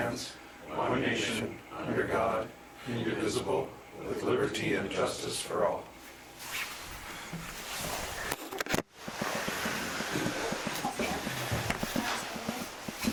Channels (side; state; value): both; identical; correlation 1.00